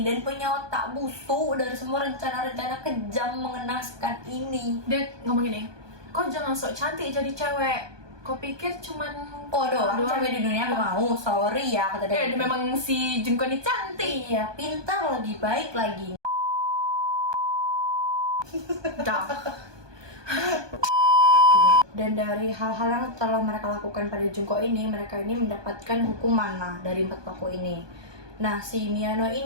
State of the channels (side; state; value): left; late; 1.2 ms